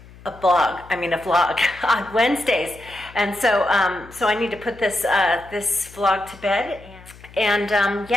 a vlog on Wednesdays, and so I need to put this vlog to bed, and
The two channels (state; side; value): noise; left; hum, 21 dB below the sound